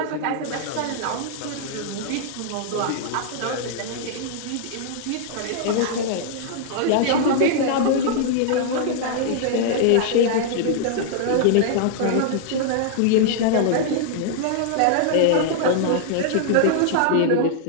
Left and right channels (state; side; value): different; both; correlation -0.01